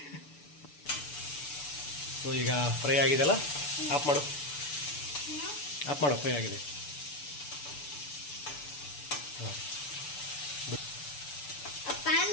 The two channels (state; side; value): late; right; 6.9 ms